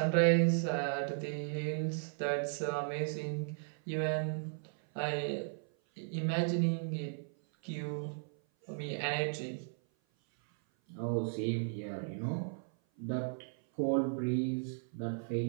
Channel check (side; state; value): left; silent; 54 dB below the other